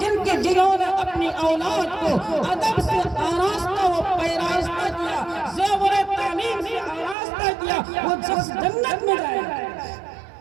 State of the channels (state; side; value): drops out; left; at 7.2 s